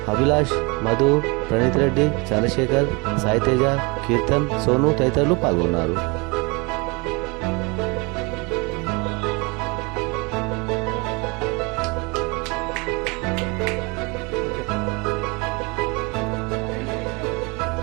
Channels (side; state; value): left; quieter; 28.3 dB